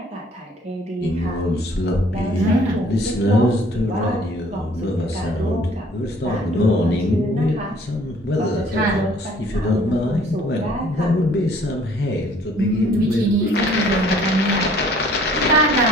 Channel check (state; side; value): normal; both; correlation 0.57